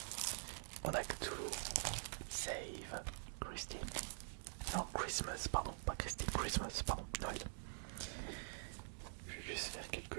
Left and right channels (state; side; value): silent; left; digital silence